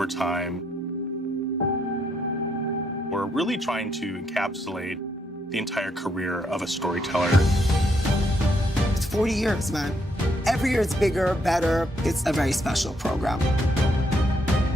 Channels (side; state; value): both; normal; correlation 0.74